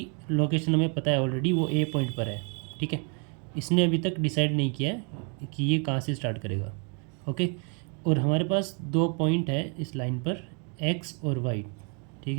लोकेशन हमें पता है ऑलरेडी, वो ए पॉइंट पर है, ठीक है। इसने अभी तक डिसाइड नहीं किया है कि ये कहाँ से स्टार्ट करेगा, ओके। और हमारे पास दो पॉइंट है इस लाइन पर, एक्स और वाई, ठीक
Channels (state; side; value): quieter; left; 36.4 dB